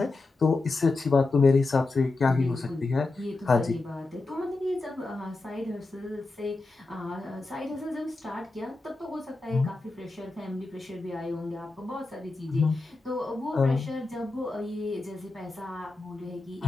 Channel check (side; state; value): right; quieter; 3.3 dB